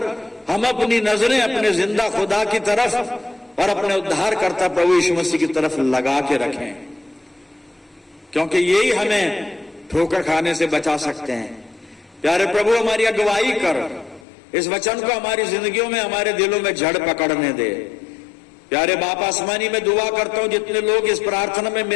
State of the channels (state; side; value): drops out; right; at 14.2 s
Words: हम अपनी नजरें अपने जिंदा खुदा की तरफ और अपने उद्धारकर्ता प्रभु यीशु मसीह की तरफ लगा के रखें, क्योंकि यही हमें ठोकर खाने से बचा सकते हैं। प्यारे प्रभु, हमारी अगुवाई कर, इस वचन को हमारी जिंदगियों में, हमारे दिलों में जड़ पकड़ने दे। प्यारे बाप आसमानी, में दुआ करता हूं जितने लोग इस प्रार्थना में